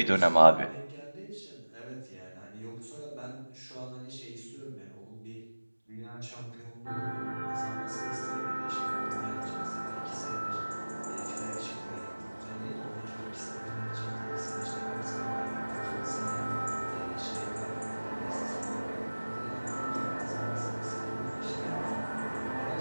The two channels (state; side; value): inverted; both; correlation -1.00